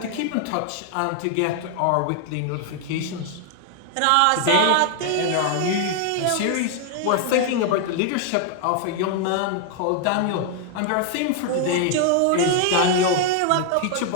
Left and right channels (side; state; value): both; different; correlation 0.00